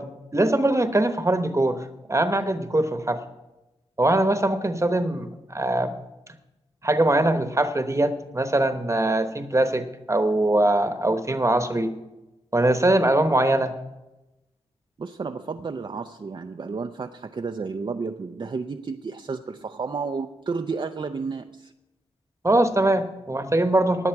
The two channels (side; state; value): both; normal; correlation 0.82